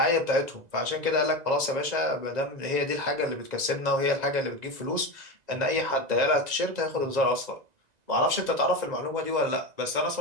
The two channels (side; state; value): left; late; 2.0 ms